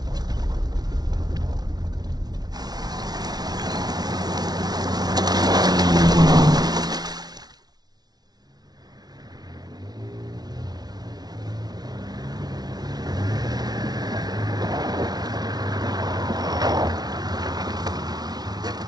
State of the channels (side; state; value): left; late; 0.19 ms